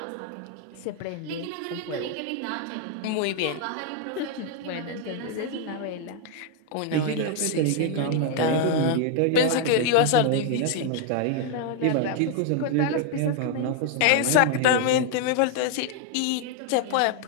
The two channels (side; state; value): both; different; correlation 0.00